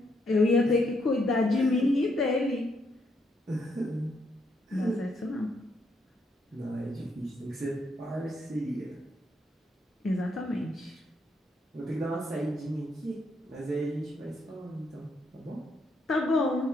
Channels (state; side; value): normal; both; correlation 0.75